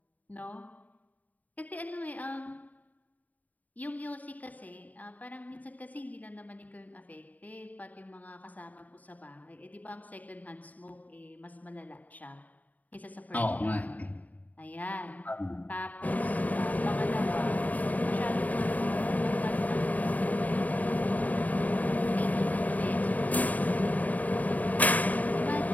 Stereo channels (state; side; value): late; right; 0.075 ms